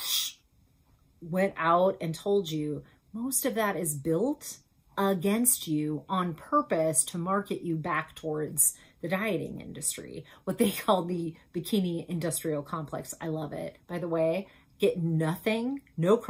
went out and told you most of that is built against you on purpose to market you back towards the dieting industry, what they call the bikini industrial complex. I love it. By the way, get nothing, no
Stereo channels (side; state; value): both; identical; correlation 1.00